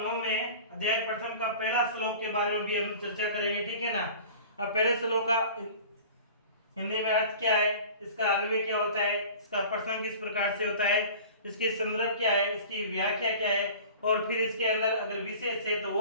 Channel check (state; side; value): inverted; both; correlation -0.41